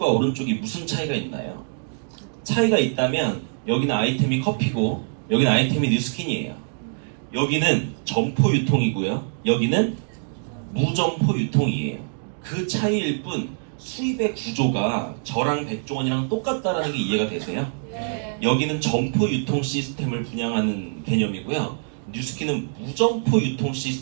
오른쪽이 무슨 차이가 있나요? 차이가 있다면 여기는 아이템이 커피고 여기는 아이템이 뉴스킨이에요. 여기는 점포 유통이고요. 여기는 무점포 유통이에요. 그 차이일 뿐 수입의 구조가 저랑 백종원이랑 똑같다라는 게 이해가 되세요? 여기는 점포 유통 시스템을 분양하는 개념이고요. 뉴스킨은 무점포 유통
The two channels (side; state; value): left; silent; digital silence